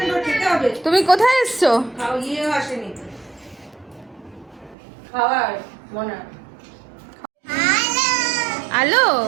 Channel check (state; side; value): drops out; left; at 4.8 s